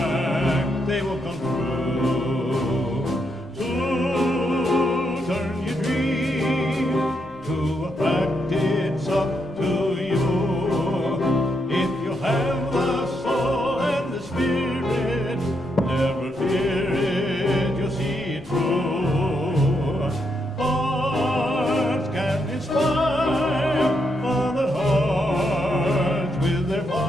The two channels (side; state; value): both; normal; correlation 0.79